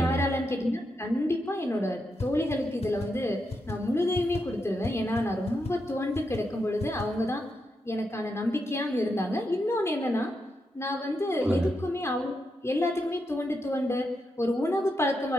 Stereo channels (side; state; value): both; normal; correlation 0.84